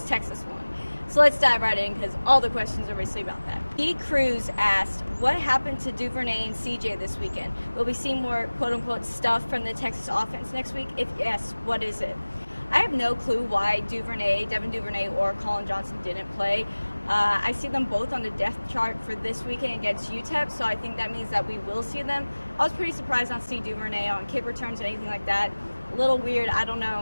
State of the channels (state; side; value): inverted; both; correlation -1.00